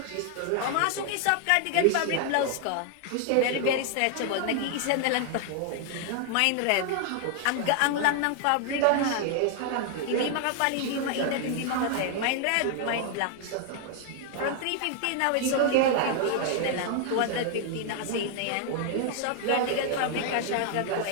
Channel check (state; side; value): different; both; correlation 0.00